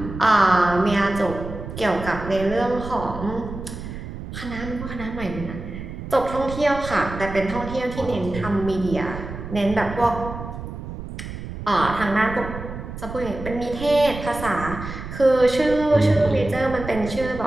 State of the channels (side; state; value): right; noise; rumble, 9 dB below the sound